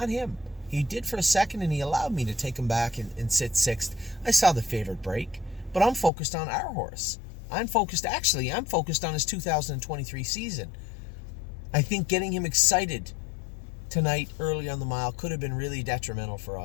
him. He did for a second, and he allowed me to take him back and sit sixth. I saw the favorite break, but I'm focused on our horse. I'm focused on his 2023 season. I think getting him excited tonight early on the mile could have been really detrimental for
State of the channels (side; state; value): right; drops out; at 6.1 s